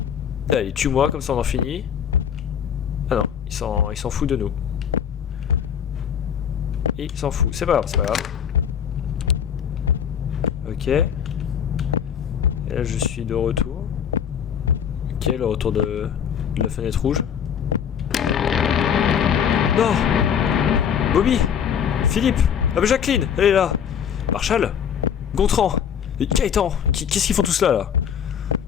Allez, tue-moi, comme ça on en finit. Ah non, il s'en fout de nous. Il s'en fout, c'est pas grave. Ok. Et là je suis de retour. Ok, le retour de la fenêtre rouge. Non! Bobby! Philippe! Ah bah Jacqueline! Elle est là! Marshall! Gontran! Gaëtan! Qu'est-ce qu'ils font tous là?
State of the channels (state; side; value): quieter; right; 8.2 dB